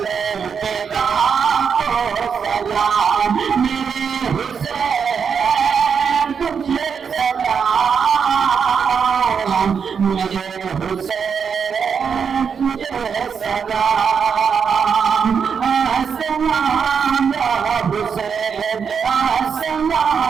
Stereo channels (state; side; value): quieter; left; 6.6 dB